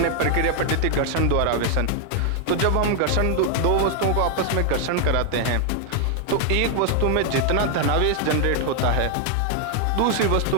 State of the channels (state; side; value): different; both; correlation 0.00